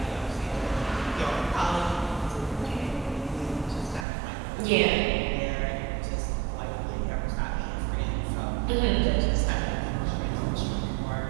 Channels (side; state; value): left; drops out; at 4.0 s